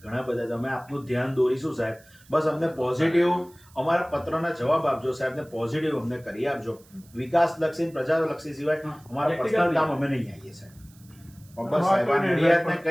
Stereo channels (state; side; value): noise; right; hiss, 27 dB below the sound